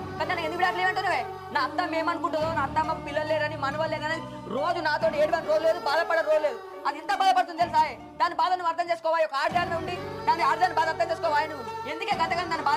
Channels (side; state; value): both; identical; correlation 1.00